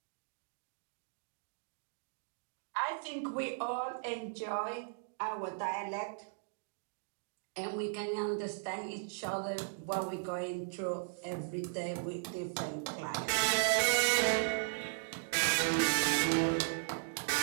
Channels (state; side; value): silent; left; digital silence